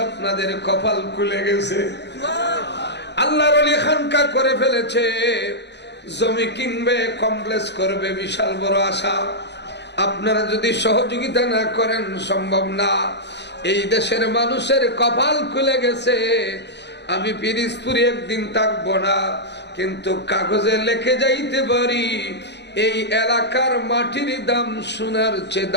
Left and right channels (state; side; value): late; right; 0.50 ms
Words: আপনাদের কপাল খুলে গেছে, আল্লাহর ওলি খানকা করে ফেলেছে, জমি কিনবে, কমপ্লেক্স করবে, বিশাল বড় আশা। আপনারা যদি সহযোগিতা না করেন সম্ভব না। এই দেশের মানুষের কপাল খুলে গেছে, আমি পিরিজপুরে একদিন থাকবো না, কিন্তু কাগজে লিখে যাইতে পারি এই এলাকার মাটির দাম সোনার চেয়ে